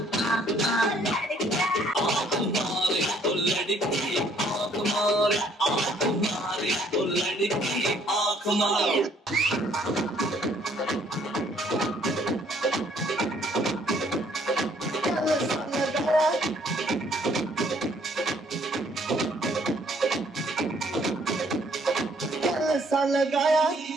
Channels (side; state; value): both; normal; correlation 0.63